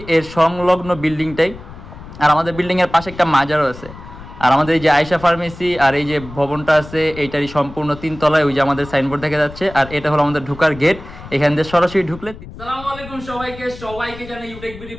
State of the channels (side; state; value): left; noise; rumble, 16 dB below the sound